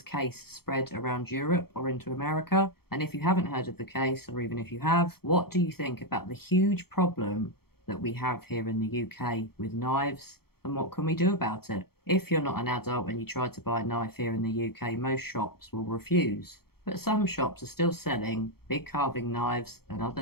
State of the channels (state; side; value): late; right; 0.95 ms